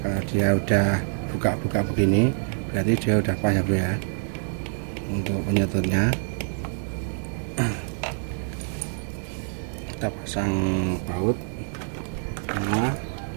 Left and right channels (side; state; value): left; silent; digital silence